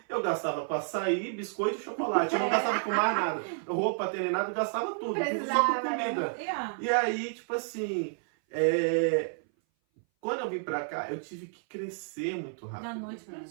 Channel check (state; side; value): silent; left; 57 dB below the other